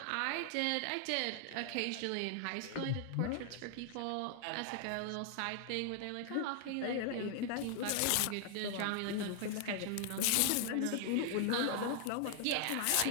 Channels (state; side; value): different; both; correlation 0.00